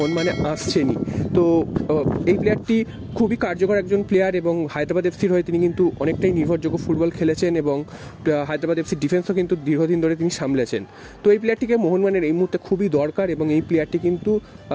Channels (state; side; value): identical; both; correlation 1.00